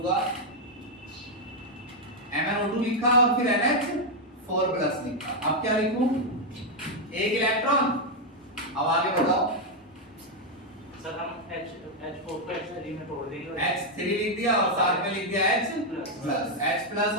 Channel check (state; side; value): normal; both; correlation 0.01